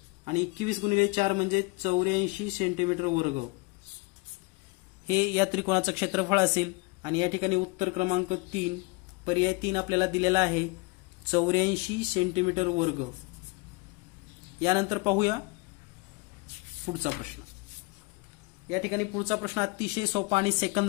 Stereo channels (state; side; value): quieter; right; 27.3 dB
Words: आणि 21 गुणिले 4 म्हणजे 84 सेंटीमीटर वर्ग हे या त्रिकोणाचं क्षेत्रफळ असेल. आणि या ठिकाणी उत्तर क्रमांक 3 पर्याय 3 आपल्याला दिलेला आहे 84 सेंटीमीटर वर्ग. यानंतर पाहूया पुढचा प्रश्न. या ठिकाणी पुढचा प्रश्न अतिशय सोपा आणि